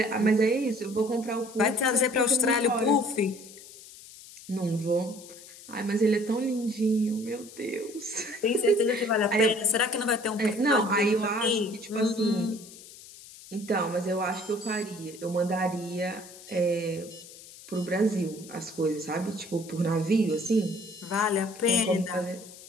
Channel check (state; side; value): noise; left; hiss, 18 dB below the sound